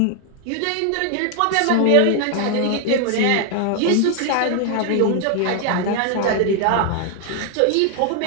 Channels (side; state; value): both; different; correlation 0.00